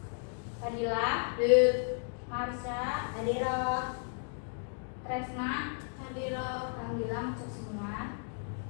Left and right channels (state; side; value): silent; right; 55 dB below the other